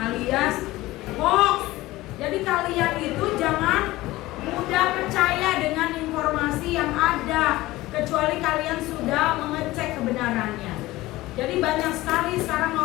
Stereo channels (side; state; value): right; quieter; 18.2 dB